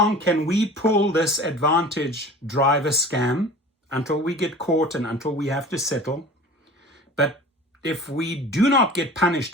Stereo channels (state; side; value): normal; both; correlation 0.40